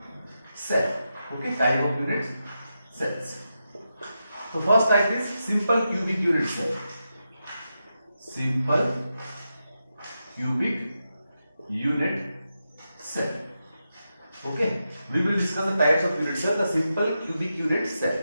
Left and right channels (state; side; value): inverted; both; correlation -0.88